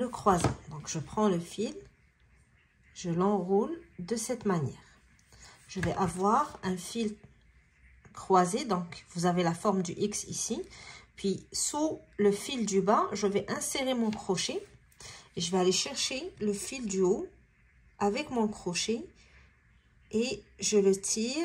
croisant. Donc, je prends le fil. Je l'enroule de cette manière. Je vais avoir un fil croisé. Donc, vous avez la forme du X ici. Puis, sous le fil du bas, je vais insérer mon crochet. Et je vais aller chercher le fil du haut avec mon crochet. Et je le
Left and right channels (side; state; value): both; identical; correlation 1.00